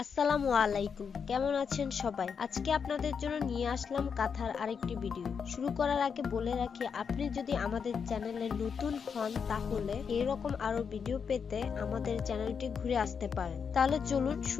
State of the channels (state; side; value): quieter; right; 6.4 dB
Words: আলাইকুম, কেমন আছেন সবাই? আজকে আপনাদের জন্য নিয়ে আসলাম কাঁথার আরেকটি ভিডিও। শুরু করার আগে বলে রাখি, আপনি যদি আমাদের চ্যানেলে নতুন হন তাহলে এরকম আরো ভিডিও পেতে আমাদের চ্যানেলটি ঘুরে আসতে পারেন। তাহলে চলুন